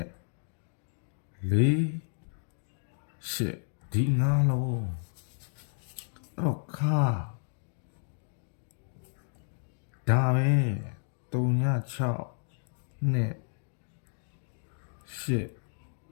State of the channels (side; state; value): right; silent; digital silence